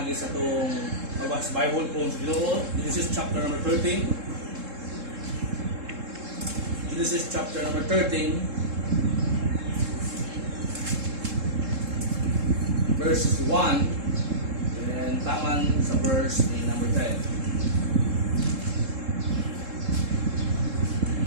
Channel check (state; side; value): late; left; 3.7 ms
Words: sa itong magbasa Bible kung sa Ginoo. Genesis chapter number 13. Genesis chapter number 13. Verses 1. And taman sa verse number